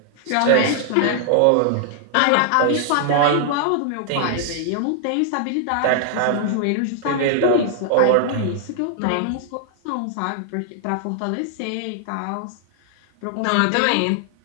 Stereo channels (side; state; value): both; different; correlation 0.00